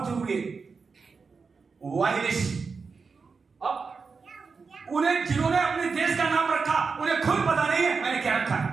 जरूरी है। वायलिश, अब उन्हें जिन्होंने अपने देश का नाम रखा उन्हें खुद पता नहीं है मैंने क्या रखा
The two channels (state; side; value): quieter; left; 4.9 dB